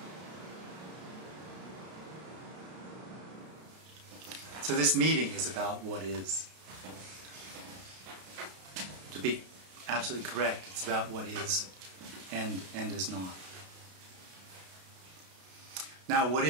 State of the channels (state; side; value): late; left; 32 ms